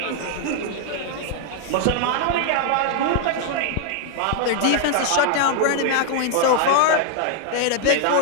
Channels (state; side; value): different; both; correlation 0.00